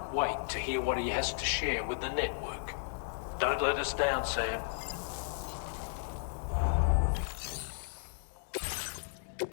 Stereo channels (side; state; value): right; silent; 55 dB below the other